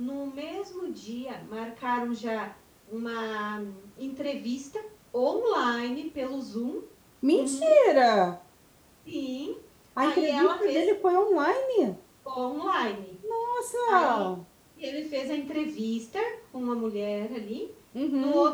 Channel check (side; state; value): both; identical; correlation 1.00